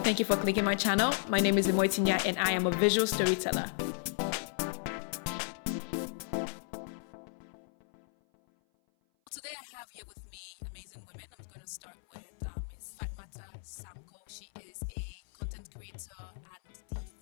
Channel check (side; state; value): right; silent; 55 dB below the other